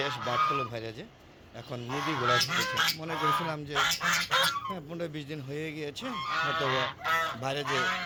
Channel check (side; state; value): both; identical; correlation 1.00